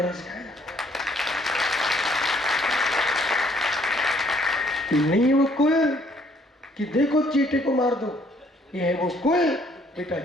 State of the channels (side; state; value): both; normal; correlation 0.64